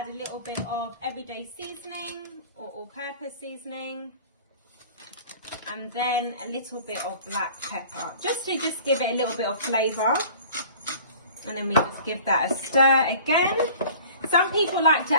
a little bit of everyday seasoning or all-purpose seasoning, and then a little bit of black pepper, just to give it a little bit of flavour. And then we just give that a stir again. Some people like to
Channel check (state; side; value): inverted; both; correlation -0.47